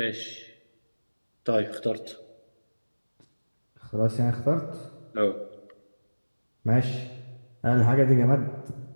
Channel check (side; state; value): both; inverted; correlation -1.00